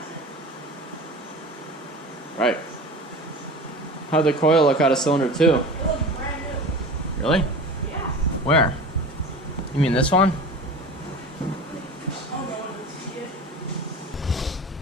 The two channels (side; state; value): both; normal; correlation 0.34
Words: it? Right. How'd the coil look out of cylinder 2? It looks brand new. Really? Yeah. Where? You mean this one? Oh, no one would see it.